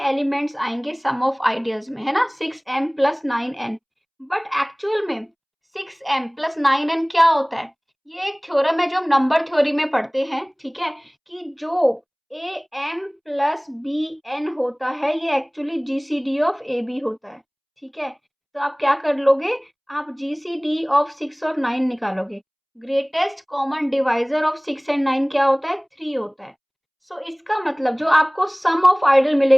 आएंगे सम ऑफ आइडियल्स में, है ना, 6m plus 9n। But actual में 6m प्लस 9n क्या होता है, ये एक थ्योरम है जो हम नंबर थ्योरी में पढ़ते हैं। ठीक है, कि जो a m plus b n होता है ये actually GCD of a b होता है। ठीक है, तो आप क्या कर लोगे, आप जीसीडी ऑफ 6 और 9 निकालोगे। Greatest common divisor of 6 and 9 क्या होता है, 3 होता है। सो इसका मतलब जो आपको सम ऑफ आइडियल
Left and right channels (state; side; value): identical; both; correlation 1.00